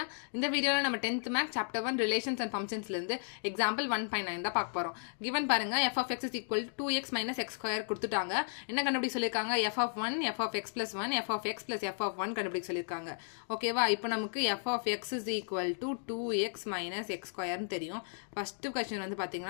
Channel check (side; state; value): right; silent; digital silence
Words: இந்த வீடியோல நம்ம 10th math chapter 1 relations and functions ல இருந்து example 1.9 தான் பார்க்க போறோம். given பாருங்க f of x is equal to 2x minus x square கொடுத்துட்டாங்க. என்ன கண்டுபிடிக்க சொல்லிருக்காங்க? f of 1, f of x plus 1, f of x plus f of 1 கண்டுபிடிக்க சொல்லிருக்காங்க. ஓகேவா? இப்போ நமக்கு f of x is equal to 2x minus x square னு தெரியும். ஃபர்ஸ்ட் क्वेश्चन வந்து